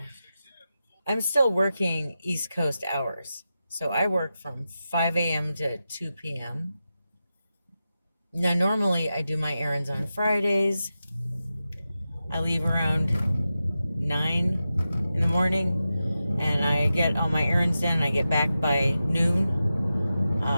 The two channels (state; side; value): inverted; both; correlation -0.91